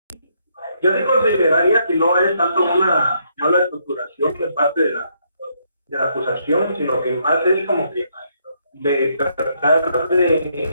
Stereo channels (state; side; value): inverted; both; correlation -0.73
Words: Yo sí consideraría que no es tanto una mala estructuración de parte de la acusación, sino que más es como que de tratar